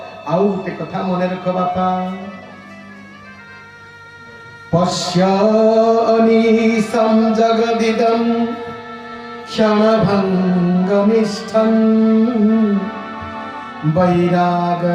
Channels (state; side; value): identical; both; correlation 1.00